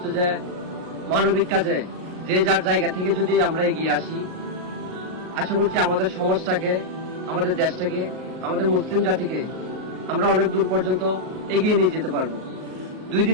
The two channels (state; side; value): late; left; 38 ms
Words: যে মানবিক কাজে যে যার জায়গা থেকে যদি আমরা এগিয়ে আসি, আশা করছি আমাদের সমাজটাকে, আমাদের দেশটাকে, আমাদের মুসলিম জাতিকে আমরা অনেক দূর পর্যন্ত এগিয়ে নিয়ে যেতে পারবো। 2